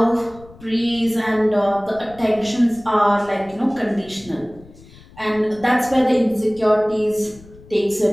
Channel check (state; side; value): noise; left; rumble, 23 dB below the sound